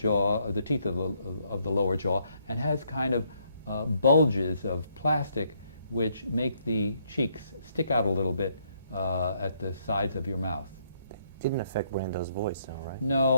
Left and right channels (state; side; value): inverted; both; correlation -0.72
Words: or the teeth of the lower jaw, and has kind of bulges of plastic which make the cheeks stick out a little bit at the sides of your mouth. Didn't affect Brando's voice, though, right?